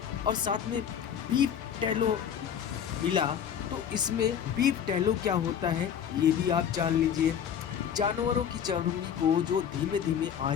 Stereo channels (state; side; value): quieter; right; 8.5 dB